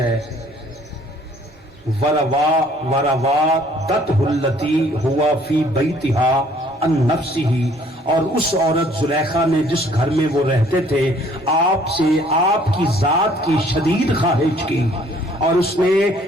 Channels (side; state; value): both; normal; correlation 0.59